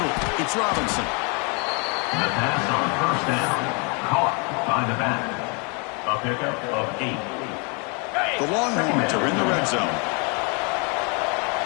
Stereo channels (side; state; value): right; quieter; 34.1 dB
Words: it's Robinson. The pass on first down, caught by the back. A pickup of 8. The Longhorns are in the red zone.